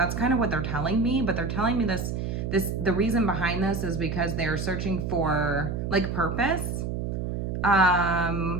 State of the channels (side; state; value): right; noise; hum, 3 dB below the sound